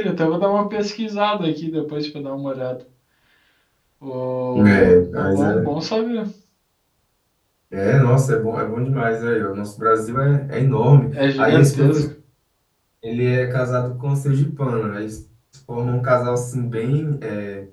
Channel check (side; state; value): both; identical; correlation 1.00